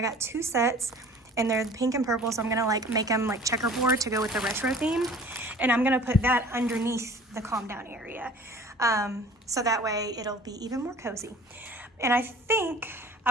got 2 sets, and they're pink and purple, so I'm gonna like make them like checkerboard to go with the retro theme, and I'm gonna put that underneath the calm down area, so that way it'll be even more cozy. And I think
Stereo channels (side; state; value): both; normal; correlation 0.47